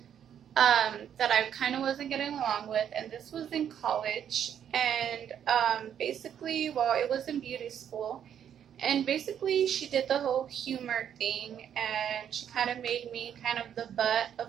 that I kind of wasn't getting along with, and this was in college. And basically, well, it was in beauty school, and basically she did the whole humor thing, and she kind of made me kind of the butt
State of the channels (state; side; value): quieter; left; 9.2 dB